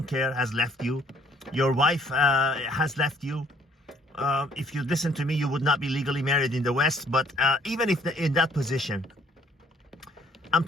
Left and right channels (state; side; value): normal; both; correlation 0.62